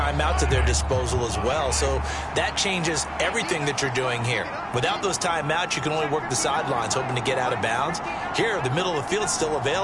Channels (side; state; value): both; identical; correlation 1.00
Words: at their disposal as well, so that changes everything that you're doing here. Without those timeouts, you can only work the sidelines, hoping to get out of bounds. Here, the middle of the field is still